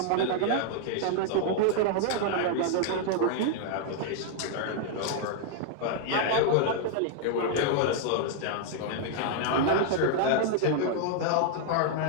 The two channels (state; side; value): different; both; correlation 0.00